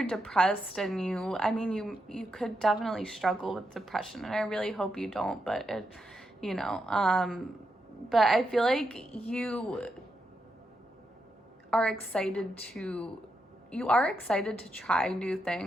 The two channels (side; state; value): both; normal; correlation 0.84